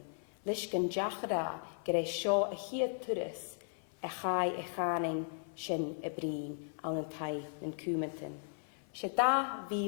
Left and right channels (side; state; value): right; silent; 53 dB below the other